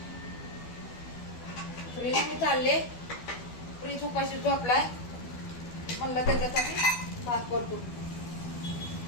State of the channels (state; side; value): late; right; 12 ms